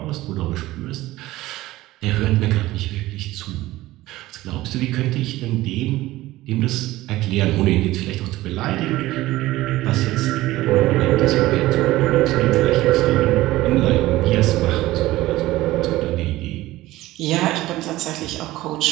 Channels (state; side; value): quieter; left; 17.2 dB